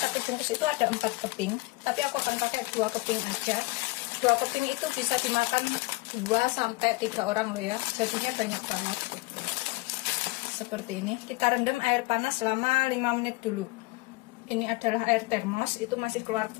bungkus itu ada 4 keping, tapi aku akan pakai 2 keping aja. 2 keping itu bisa dimakan 2-3 orang loh ya, jadinya banyak banget. Seperti ini, kita rendam air panas selama 5 menit dulu. Ini adalah air termos, itu masih keluar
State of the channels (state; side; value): quieter; right; 24.0 dB